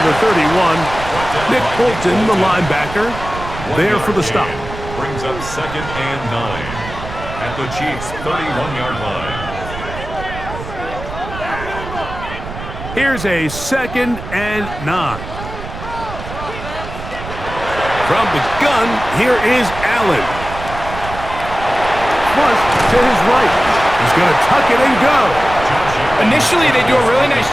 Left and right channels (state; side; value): noise; right; rumble, 10 dB below the sound